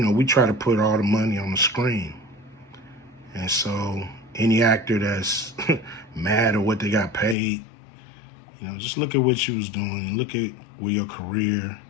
try to put all the money on the screen. And so any actor that's mad at what they got paid, just look at what you was doing. Look at where your career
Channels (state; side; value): drops out; right; at 7.4 s